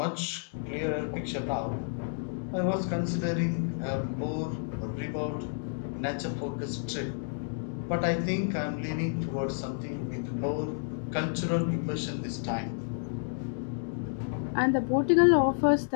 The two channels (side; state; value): right; silent; digital silence